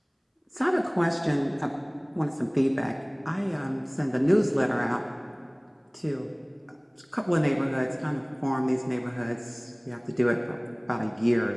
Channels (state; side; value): identical; both; correlation 1.00